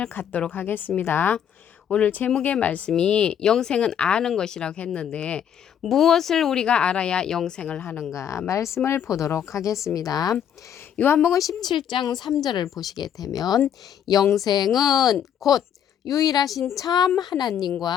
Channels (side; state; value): right; quieter; 9.1 dB